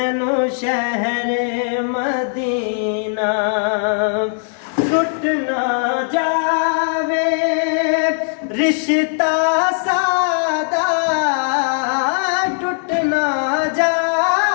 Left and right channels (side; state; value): right; silent; digital silence